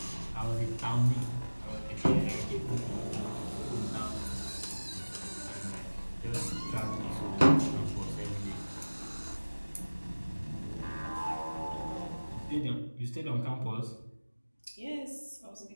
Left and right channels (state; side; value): inverted; both; correlation -1.00